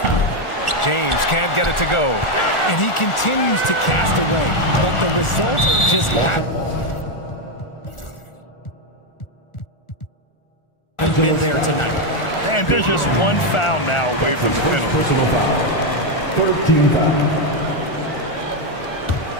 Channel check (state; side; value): late; right; 1.4 ms